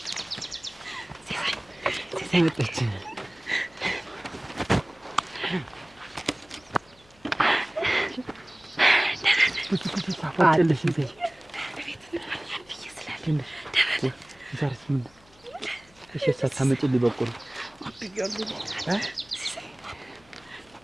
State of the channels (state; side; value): noise; left; hum, 28 dB below the sound